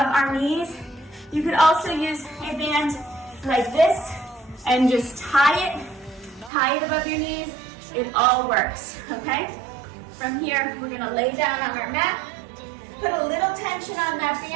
our knees. You could also use a band like this and just tie it above your knees. It all works, okay? From here, we're gonna lay down on our mat, put a little tension on that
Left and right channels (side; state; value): left; drops out; at 6.5 s